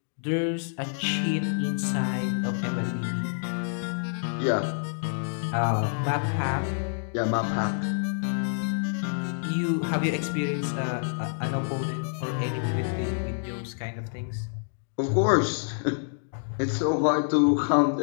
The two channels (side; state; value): right; silent; digital silence